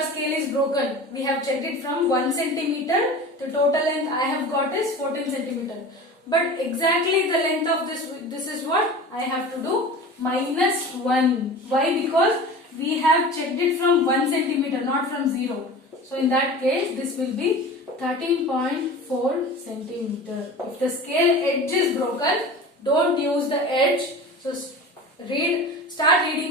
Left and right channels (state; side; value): normal; both; correlation 0.35